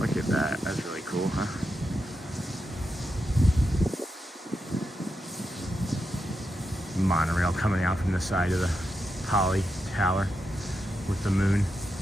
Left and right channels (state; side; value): normal; both; correlation 0.86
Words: at that. That's really cool, huh? Monorail coming out from the side of the Poly Tower with the moon.